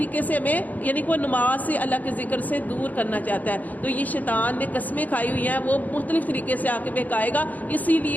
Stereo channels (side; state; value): right; late; 0.080 ms